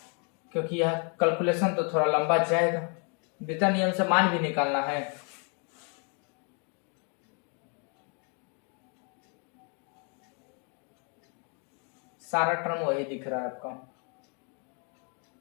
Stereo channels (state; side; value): quieter; right; 37.8 dB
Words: क्योंकि यह कैलकुलेशन तो थोड़ा लंबा जाएगा, वितरण नियम से मान भी निकालना है। सारा टर्म वही दिख रहा है आपका,